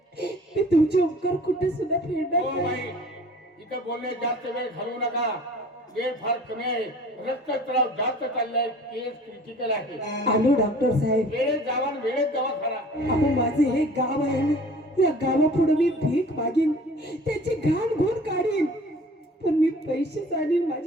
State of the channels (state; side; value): normal; both; correlation 0.47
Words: मी तुमचे उपकार कुठे सुद्धा फेडणार हो नाही. बाई, इथं बोलण्यात जास्त वेळ घालवू नका. वेळ फार कमी आहे. रक्तस्राव जास्त चाललाय. केस क्रिटिकल आहे. आलो डॉक्टर साहेब. वेळेत जावा आणि वेळेत दवाखाना. अहो माझे हे गाव आहे ना, या गावापुढे मी भीक मागीन, त्याची घाण घोण काढीन, पण मी पैसे आणीन